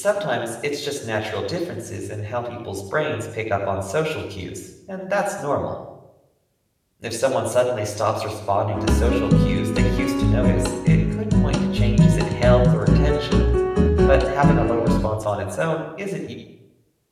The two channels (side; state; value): both; identical; correlation 1.00